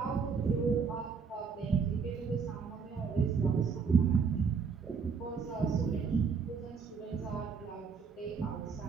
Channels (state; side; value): quieter; left; 5.7 dB